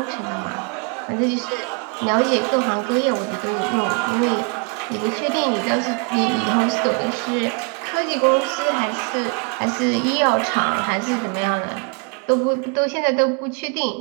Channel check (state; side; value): quieter; left; 34.1 dB